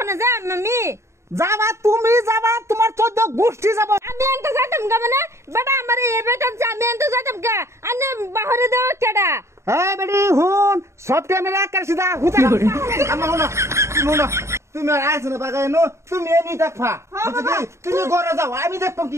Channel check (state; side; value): late; left; 0.14 ms